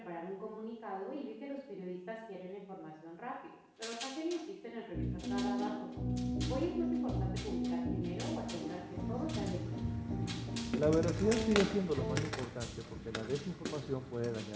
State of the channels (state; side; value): identical; both; correlation 1.00